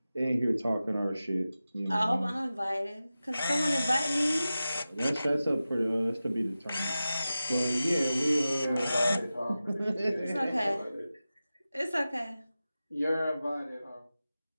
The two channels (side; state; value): both; inverted; correlation -0.94